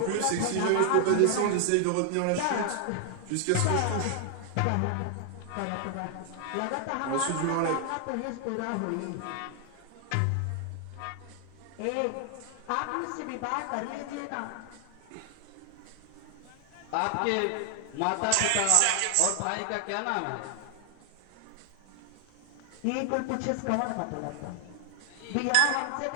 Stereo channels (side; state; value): both; different; correlation 0.00